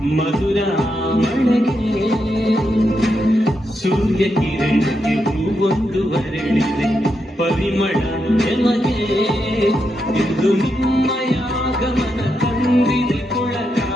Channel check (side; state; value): both; normal; correlation 0.83